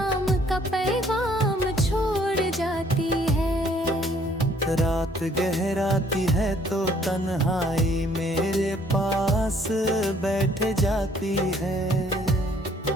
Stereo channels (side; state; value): both; normal; correlation 0.62